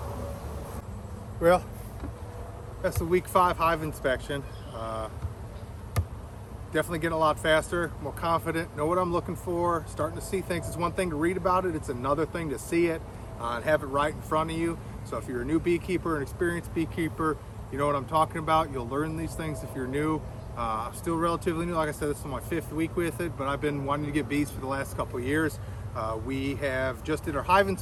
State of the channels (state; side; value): identical; both; correlation 1.00